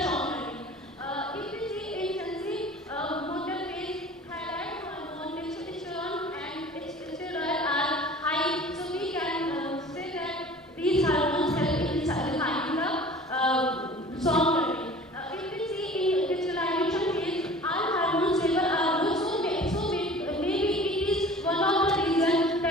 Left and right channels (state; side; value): normal; both; correlation 0.44